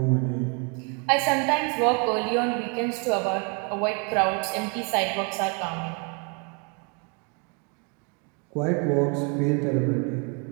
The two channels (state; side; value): quieter; left; 35.3 dB